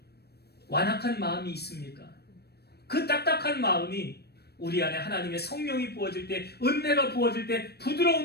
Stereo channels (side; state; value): right; late; 0.47 ms